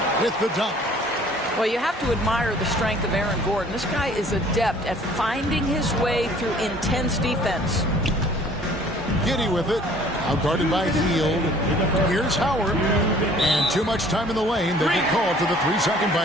with the dunk. Well, you have to admire the strength of Aaron Gordon. This guy is adept at finding his way through intense defense. Giddey with it. Outguarded by Hield. Here's Howard. And too much time in the lane. They get called for the 3-second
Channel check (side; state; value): both; normal; correlation 0.54